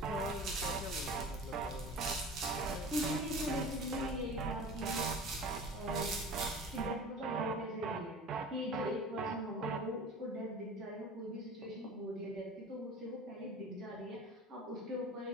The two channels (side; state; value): both; normal; correlation 0.38